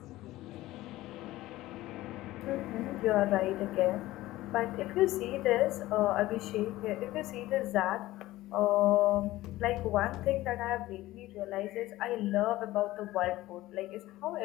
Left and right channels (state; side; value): quieter; right; 16.9 dB